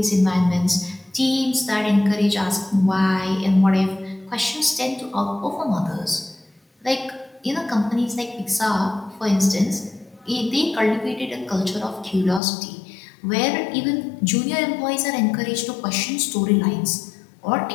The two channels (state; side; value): drops out; right; at 12.4 s